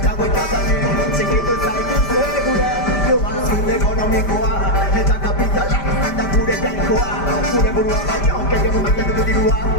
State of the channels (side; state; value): right; late; 5.1 ms